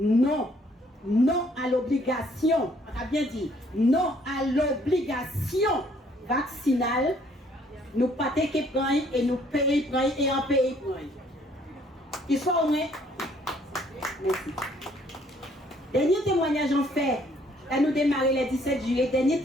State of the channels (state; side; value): normal; both; correlation 0.63